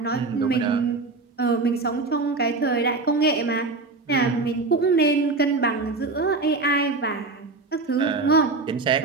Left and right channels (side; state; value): left; quieter; 3.7 dB